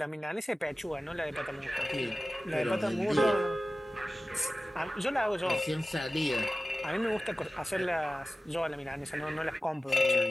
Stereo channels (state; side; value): normal; both; correlation 0.96